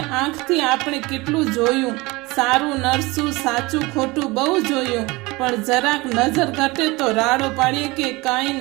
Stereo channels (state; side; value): quieter; left; 22.9 dB